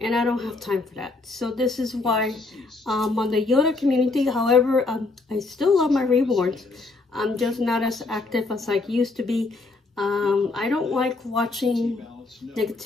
and I don't have time for that. So this is why on the Yoda community, however, I still love my reborns. I'm just not as active as I used to be. I don't like watching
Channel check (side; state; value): right; quieter; 3.5 dB